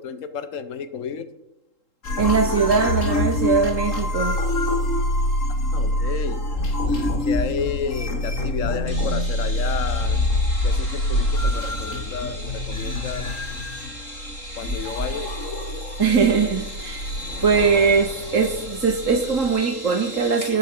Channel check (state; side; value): late; right; 3.8 ms